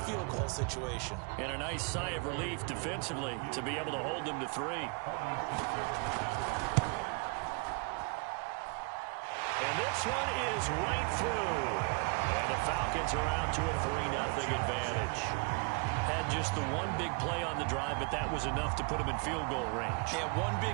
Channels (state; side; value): quieter; left; 32.9 dB